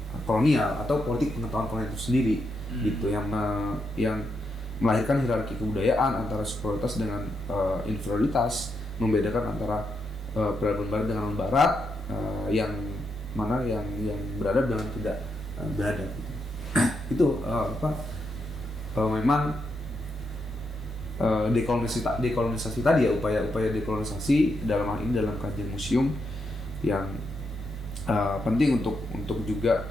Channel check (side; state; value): both; normal; correlation 0.82